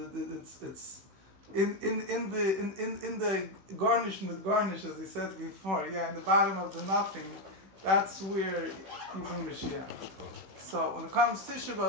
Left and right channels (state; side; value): late; left; 16 ms